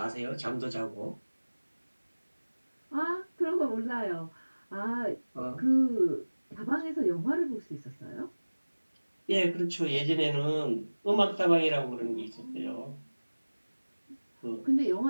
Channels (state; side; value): inverted; both; correlation -1.00